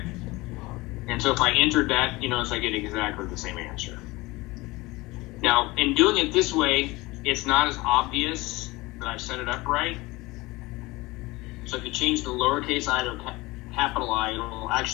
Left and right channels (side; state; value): right; quieter; 21.9 dB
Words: And so if I entered that, you notice I get exactly the same answer. Now, in doing it this way, it's not as obvious that I've set it up right. So if you change the lowercase I to capital I, it'll